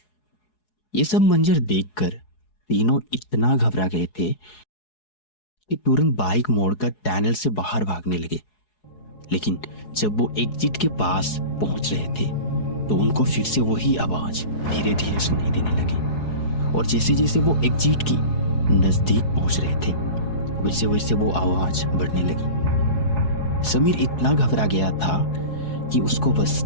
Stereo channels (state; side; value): late; right; 4.7 ms